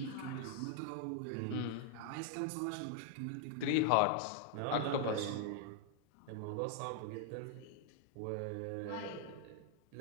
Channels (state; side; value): different; both; correlation 0.00